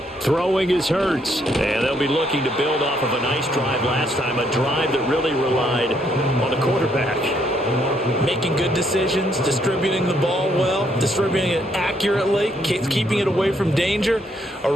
Throwing is Hurts. And they'll be looking to build off of a nice drive last time, a drive that really relied on the quarterback. Making good decisions, distributing the ball well, distributing it accurately, keeping it away from danger. A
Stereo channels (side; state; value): both; normal; correlation 0.72